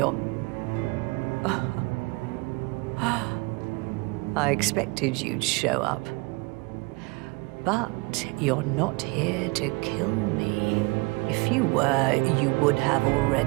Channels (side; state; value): left; quieter; 26.9 dB